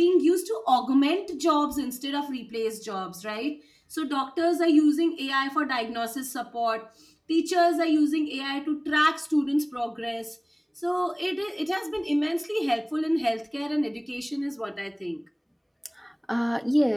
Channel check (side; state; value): both; identical; correlation 1.00